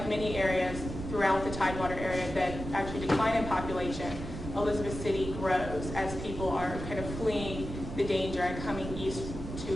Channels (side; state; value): right; noise; rumble, 8 dB below the sound